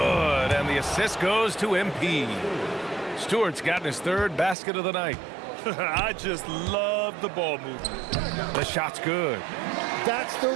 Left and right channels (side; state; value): left; drops out; at 4.5 s